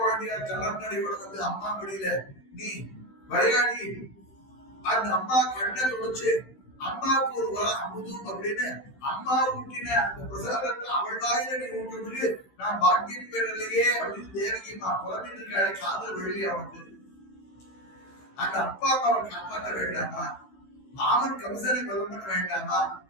கலர்நடையோட அம்மா மடியில நீ விளையாடி அந்த அம்மா கண்ணை தொடச்சு அம்மாவுக்கு ஒரு அமுதும் அப்படின்னு அம்மா ஊட்டின அந்த பிரசாதத்தை அவள் வாயில நீ ஊட்டுறதுக்கு நான் பாக்கியம் பெறலையே அப்படின்னு தேவகி அம்மா புலம்பிட்டு இருக்காளே, காதல் வெளியே அவனுக்கு. அந்த அப்பா அம்மாவை காப்பாற்ற வேண்டாமா? மாமன் கம்சனை கொலை பண்ண வேண்டாமா?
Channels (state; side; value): late; right; 16 ms